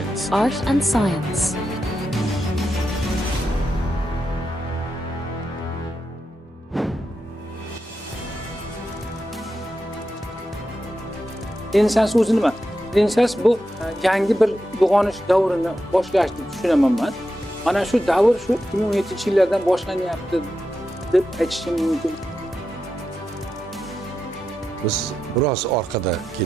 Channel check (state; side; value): normal; both; correlation 0.88